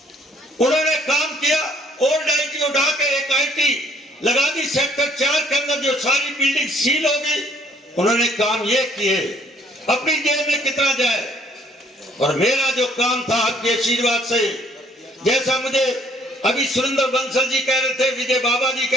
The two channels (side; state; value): both; normal; correlation 0.62